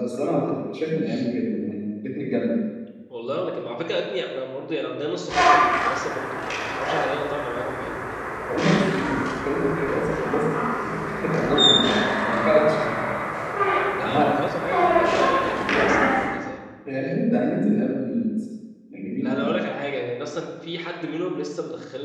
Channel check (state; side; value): identical; both; correlation 1.00